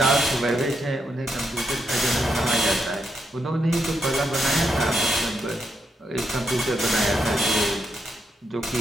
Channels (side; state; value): both; normal; correlation 0.81